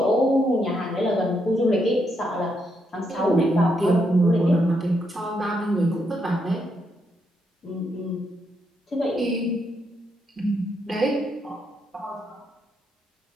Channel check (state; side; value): normal; both; correlation 0.79